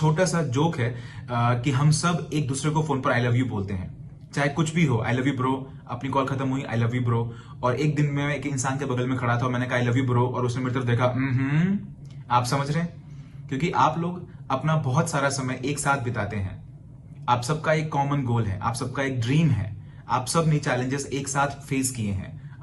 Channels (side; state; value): both; identical; correlation 1.00